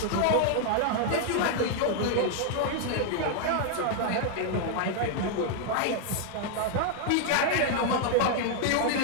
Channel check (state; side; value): different; both; correlation 0.00